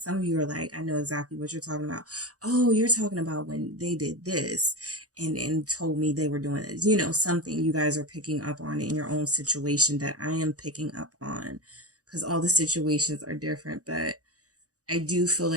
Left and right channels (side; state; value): left; late; 0.67 ms